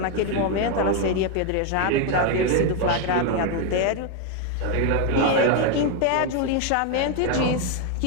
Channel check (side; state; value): both; different; correlation 0.01